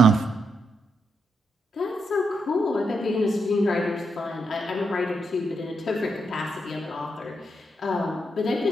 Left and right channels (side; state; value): both; normal; correlation 0.81